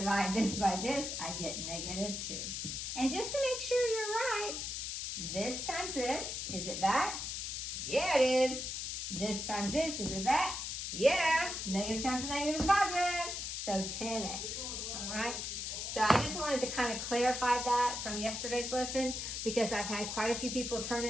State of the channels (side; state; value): left; noise; hiss, 4 dB below the sound